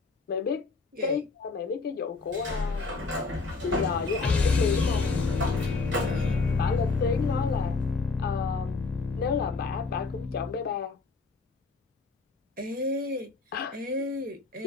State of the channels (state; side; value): quieter; right; 4.1 dB